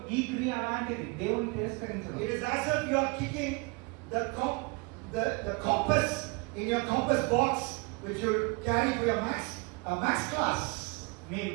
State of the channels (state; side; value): quieter; left; 29.2 dB